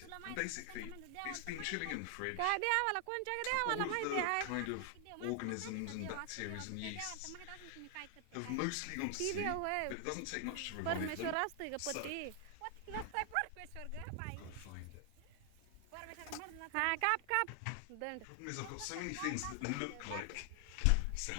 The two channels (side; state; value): both; different; correlation 0.00